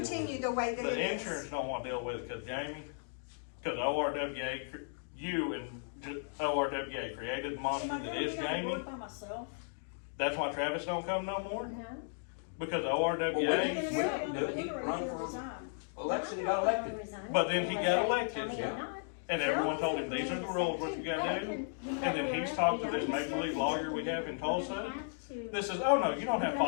continue the way that it The is. insurance don't want to deal with it because Jamie, because ORWA, you and ORWA created the Am monster I that gonna is be on the Jamie. board by myself? That's why Travis don't come no more, No? because Well, we ORWA, didn't- You're gonna do it. He sit on the run board or for- resign? Election, he got elected. But then he got elected, yeah. and everyone told him, these are the rules, what you gotta do. And then he's talked to this make-believe lawyer we have in Tulsa. This is, oh no, you don't have to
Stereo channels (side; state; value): right; silent; digital silence